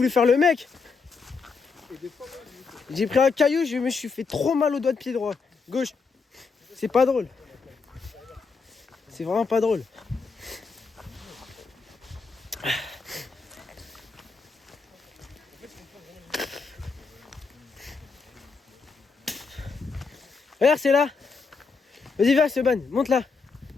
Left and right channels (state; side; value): quieter; right; 4.8 dB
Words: faire le mec. J'ai pris un caillou, je me suis fait trop mal au doigt de pied droit. Gauche. C'est pas drôle. C'est vraiment pas drôle. Regarde, c'est là. Vas-y, viens, Sioban, monte là.